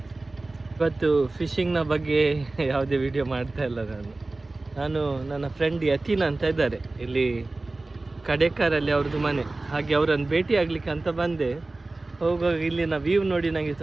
ಇವತ್ತು ಫಿಶಿಂಗ್ನ ಬಗ್ಗೆ ಯಾವುದೇ ವಿಡಿಯೋ ಮಾಡ್ತಾ ಇಲ್ಲ. ನಾನು ನನ್ನ ಫ್ರೆಂಡ್ ಯತೀನ್ ಅಂತ ಇದ್ದಾರೆ, ಇಲ್ಲಿ ಕಡೇಕಾರಲ್ಲಿ ಅವ್ರದ್ದು ಮನೆ. ಹಾಗೆ ಅವರನ್ನು ಭೇಟಿ ಆಗ್ಲಿಕ್ಕೆ ಅಂತ ಬಂದೆ. ಹೋಗುವಾಗ ಇಲ್ಲಿನ ವ್ಯೂ ನೋಡಿ ನನಗೆ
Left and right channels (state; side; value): quieter; left; 3.1 dB